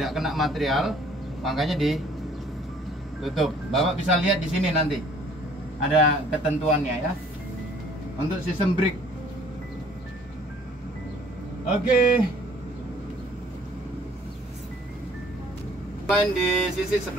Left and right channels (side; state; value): both; normal; correlation 0.57